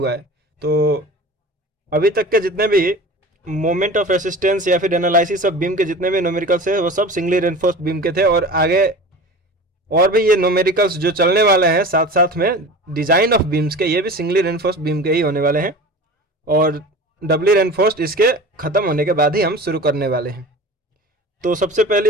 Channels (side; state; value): both; normal; correlation 0.36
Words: है। तो अभी तक के जितने भी मोमेंट ऑफ रेसिस्टेंस या फिर एनालिसिस ऑफ बीम के जितने भी न्यूमेरिकल्स है वो सब सिंगली रेनफोर्स्ड बीम के थे। और आगे और भी ये न्यूमेरिकल्स जो चलने वाले हैं साथ साथ में डिजाइन ऑफ बीम्स के, ये भी सिंगली रेनफोर्स्ड बीम के ही होने वाले हैं। और डबली रेनफोर्स्ड इसके ख़त्म होने के बाद ही हम शुरू करने वाले हैं। तो सबसे